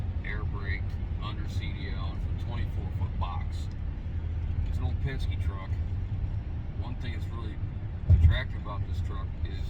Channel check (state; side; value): identical; both; correlation 1.00